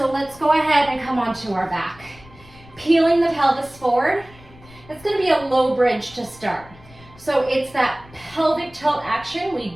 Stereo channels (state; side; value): noise; left; rumble, 23 dB below the sound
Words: let's go ahead and come onto our back. Peeling the pelvis forward. It's going to be a low bridge to start. So it's that pelvic tilt action